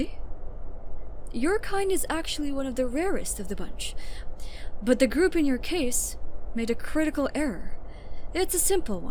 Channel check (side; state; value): both; identical; correlation 1.00